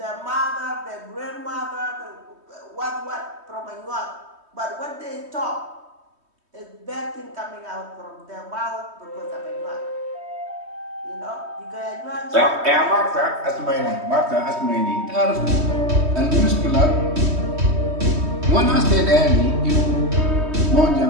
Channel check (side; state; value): left; late; 3.2 ms